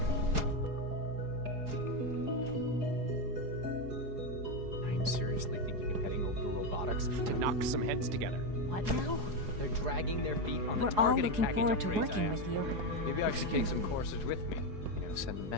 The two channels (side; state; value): left; late; 4.8 ms